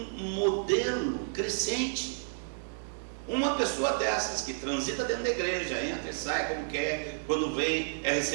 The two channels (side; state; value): left; silent; digital silence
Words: modelo crescente. Uma pessoa dessas que transita dentro da igreja, entra e sai como quer, quando vem é